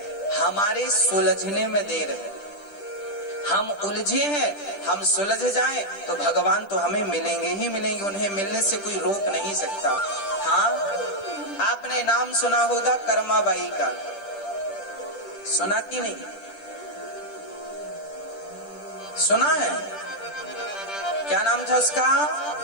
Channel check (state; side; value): late; right; 10 ms